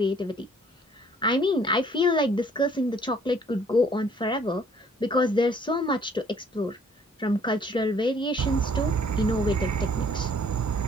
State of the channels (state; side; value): normal; both; correlation 0.59